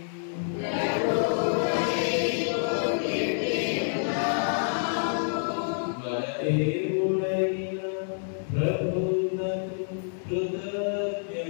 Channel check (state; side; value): silent; right; 60 dB below the other